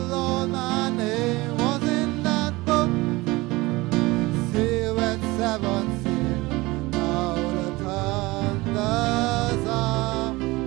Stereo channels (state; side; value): quieter; left; 21.6 dB